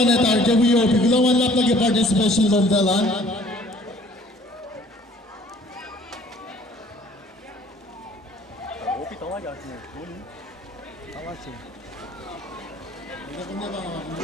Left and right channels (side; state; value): both; normal; correlation 0.55